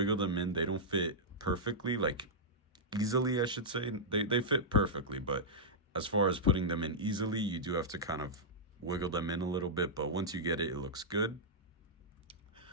them in. They don't fit perfectly, like easily, I should say. They fit perfectly, but as far as putting them in easily, you do have to kind of wiggle them in a little bit, but once you get it, it looks good.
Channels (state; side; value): normal; both; correlation -0.10